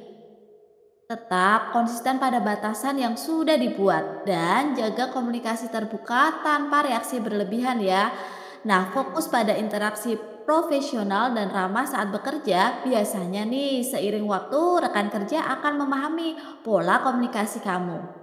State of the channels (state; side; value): identical; both; correlation 1.00